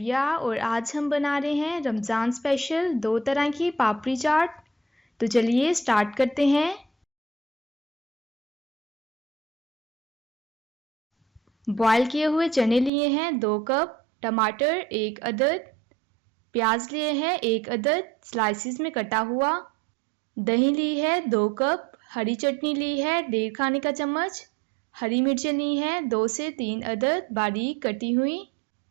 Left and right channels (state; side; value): drops out; left; at 12.9 s